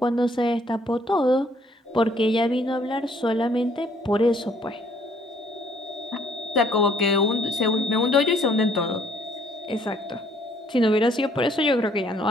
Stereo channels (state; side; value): normal; both; correlation 0.64